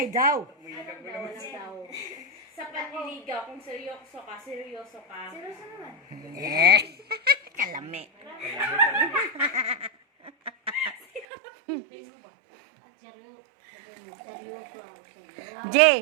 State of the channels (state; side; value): drops out; left; at 11.2 s